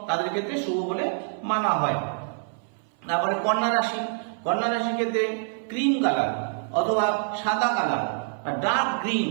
তাদের ক্ষেত্রে শুভ বলে মানা হয়। তারপরে কন্যা রাশি। কন্যা রাশির ক্ষেত্রে ক্রিম কালার অথবা সাদা কালার বা ডার্ক গ্রিন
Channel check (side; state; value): left; silent; 58 dB below the other